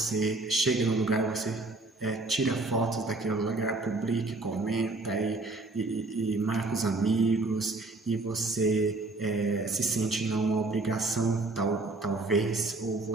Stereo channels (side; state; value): left; quieter; 3.2 dB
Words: chega no lugar, você tira fotos daquele lugar, publica, comenta e marca os amigos e você se sente numa obrigação talvez, ou